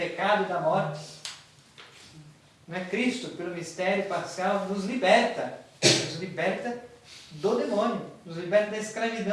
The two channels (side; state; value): both; identical; correlation 1.00